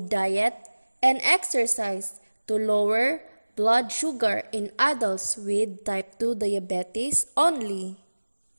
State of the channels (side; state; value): both; inverted; correlation -1.00